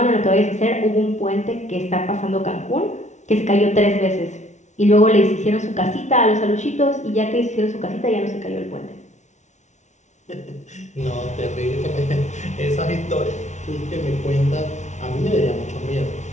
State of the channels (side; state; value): right; late; 0.34 ms